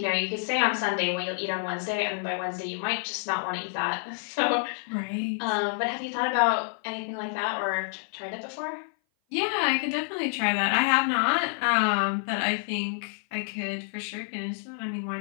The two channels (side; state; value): right; silent; 56 dB below the other